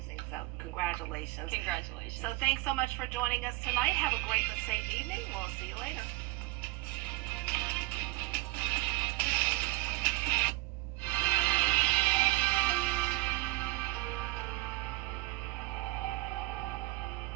So congratulations. Congratulations. So thanks so much for joining us tonight. Have a great and safe evening. We'll see you later.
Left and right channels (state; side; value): quieter; left; 20.7 dB